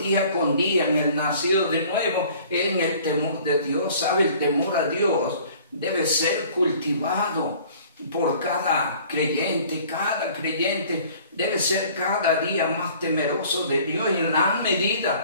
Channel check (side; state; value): both; inverted; correlation -0.51